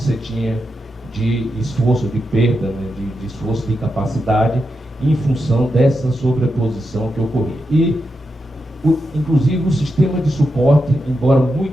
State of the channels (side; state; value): both; normal; correlation 0.87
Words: tinha de esforço, de perda, né, de esforço de incapacidade em função dessa sobreposição que ocorria. E, inclusive, o sistema de suporte, embora